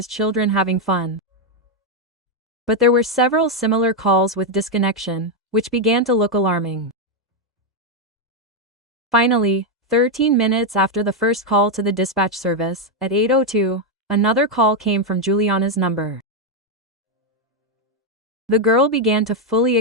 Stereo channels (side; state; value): both; normal; correlation 0.02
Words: children having fun. But there were several similar calls with disconnection, which began to look alarming. Finally, 13 minutes after the first call to the dispatch service, at 8:02, another call came from Juliana's number. The girl began to fully